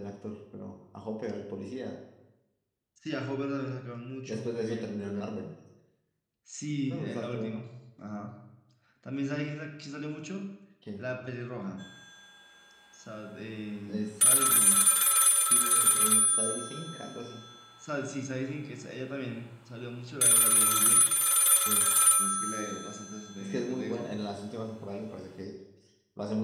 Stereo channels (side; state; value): both; identical; correlation 1.00